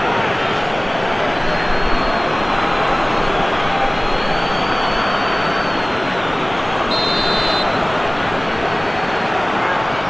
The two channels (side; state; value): left; noise; rumble, 17 dB below the sound